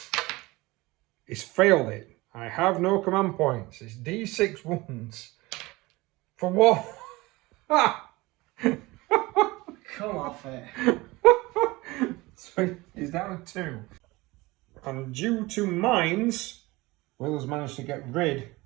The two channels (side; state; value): left; quieter; 21.5 dB